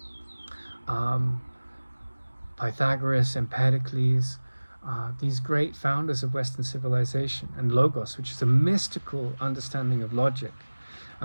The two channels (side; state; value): both; inverted; correlation -1.00